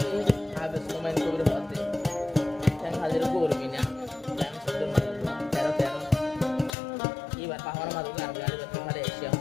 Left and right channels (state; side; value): drops out; right; at 6.8 s